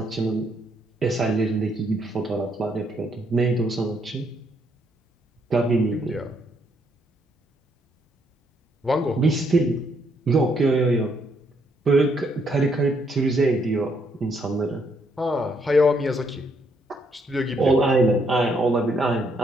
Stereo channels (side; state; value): both; normal; correlation 0.72